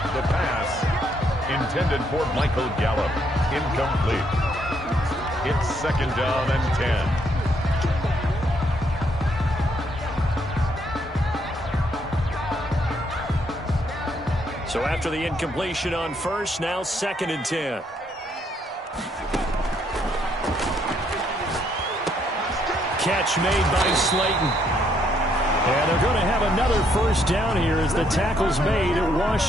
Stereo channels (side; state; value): both; normal; correlation 0.72